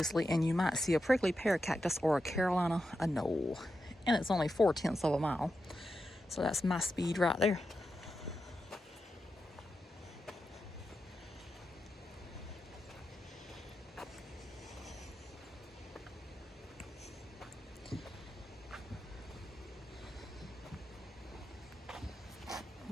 and you might see a prickly pear cactus or a Carolina anole. And it's only 4/10 of a mile. So that's my speed right there.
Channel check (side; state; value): both; normal; correlation 0.89